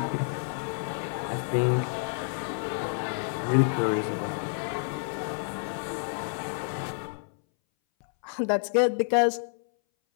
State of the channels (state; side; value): silent; right; 59 dB below the other